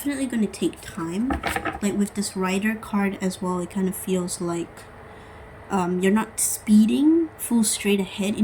going to take time. Like with this Rider card as well, it kind of feels like you're not speeding full straight ahead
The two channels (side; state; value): both; identical; correlation 1.00